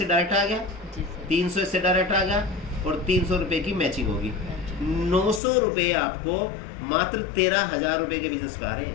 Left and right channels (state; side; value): drops out; right; at 5.4 s